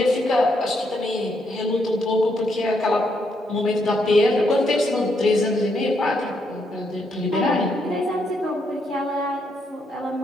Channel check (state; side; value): normal; both; correlation 0.77